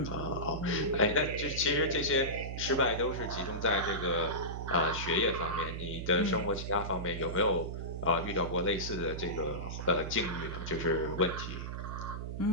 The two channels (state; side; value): noise; right; hum, 6 dB below the sound